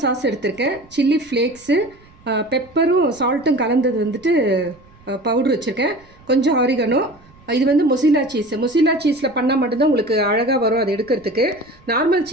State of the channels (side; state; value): right; noise; rumble, 27 dB below the sound